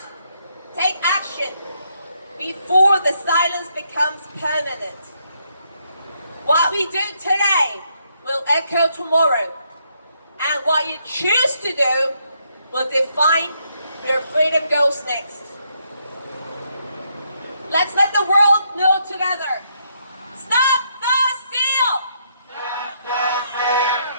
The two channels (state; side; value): inverted; both; correlation -0.75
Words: take action before the silence becomes permanent. What we do today will echo tomorrow, and what you choose to do will define where freedom goes next. Let's let the world know together. Stop the steal! Stop the steal!